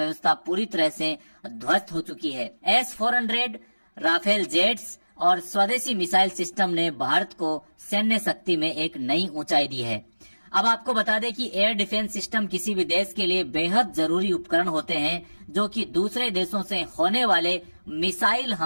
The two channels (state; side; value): inverted; both; correlation -1.00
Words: पूरी तरह से ध्वस्त हो चुकी है। S-400, राफेल जेट्स और स्वदेशी मिसाइल सिस्टम ने भारत को सैन्य शक्ति में एक नई ऊंचाई दी है। अब आपको बता दें कि एयर डिफेंस सिस्टम किसी भी देश के लिए बेहद जरूरी उपकरण होते हैं जो कि दूसरे देशों से होने वाले मिसाइल